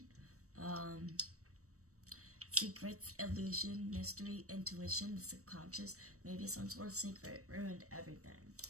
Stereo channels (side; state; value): left; late; 0.65 ms